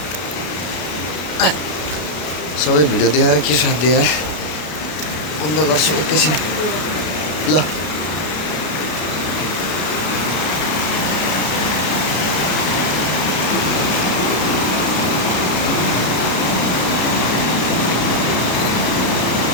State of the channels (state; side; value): late; right; 33 ms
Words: सबै भिडियो देखाएर के साथ दिए बन्द गर्छु एकैछिन ल